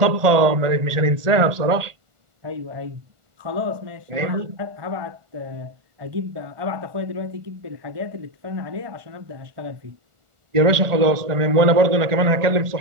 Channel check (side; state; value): left; late; 1.4 ms